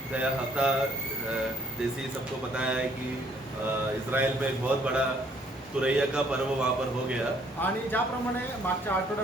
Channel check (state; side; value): normal; both; correlation 0.64